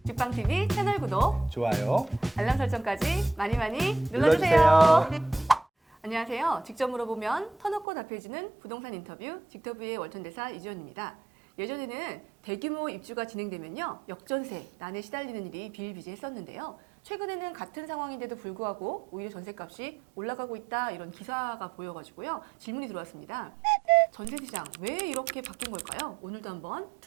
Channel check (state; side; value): drops out; left; at 7.9 s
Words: 직방TV 채널 구독, 좋아요. 알람 설정까지 많이 눌러주세요. 눌러주세요. 안녕하세요. 직접 물어보면 터놓고 답해주는 부동산 인터뷰 직터뷰의 월천대사 이주연입니다. 예전에는 대규모 입주가 진행되면요, 역전세, 난에 시달리는 일이 비일비재했었는데요. 최근에는 같은 상황인데도 불구하고 오히려 전세값이 올라가고 있다, 이런 기사가 보여가지고요, 질문이 들어왔습니다. 전세시장 왜 이렇게 바뀐 걸까요? 오늘도 한번